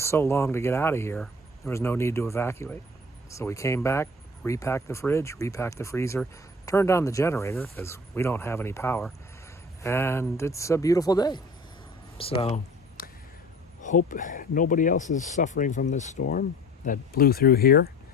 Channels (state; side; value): normal; both; correlation 0.45